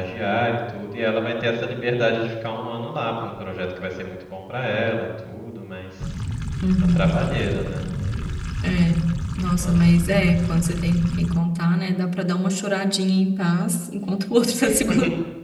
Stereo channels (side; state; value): both; identical; correlation 1.00